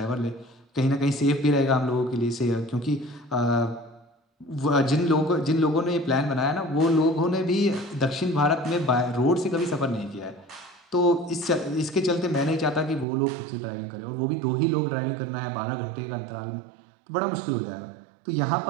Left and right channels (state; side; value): drops out; left; at 13.1 s